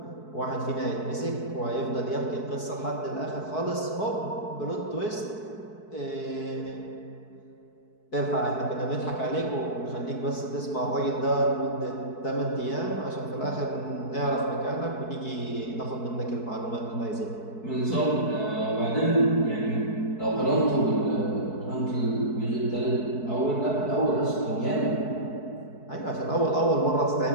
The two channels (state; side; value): late; right; 4.6 ms